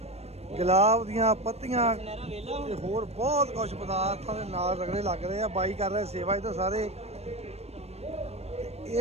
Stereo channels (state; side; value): late; left; 0.31 ms